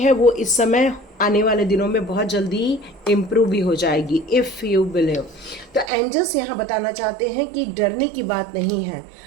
वो इस समय आने वाले दिनों में बहुत जल्दी इम्प्रूव भी हो जाएगी, इफ़ यू बिलीव। तो एंजल्स यहाँ बताना चाहते हैं कि डरने की बात नहीं है।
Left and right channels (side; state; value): left; drops out; at 5.9 s